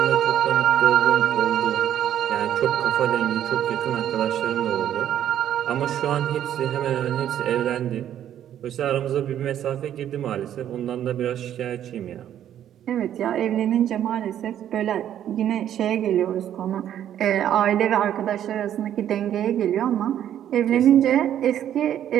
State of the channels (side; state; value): left; quieter; 10.7 dB